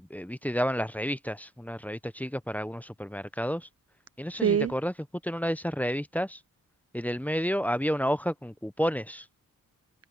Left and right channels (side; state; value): both; normal; correlation 0.76